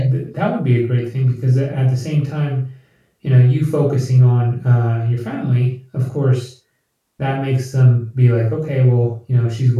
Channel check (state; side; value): identical; both; correlation 1.00